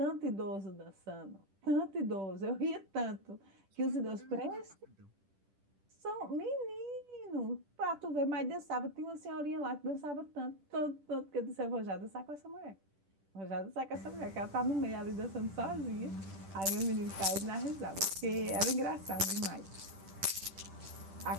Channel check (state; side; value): late; left; 10 ms